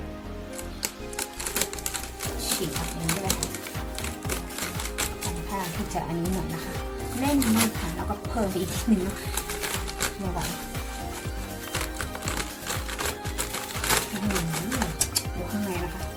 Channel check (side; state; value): both; identical; correlation 1.00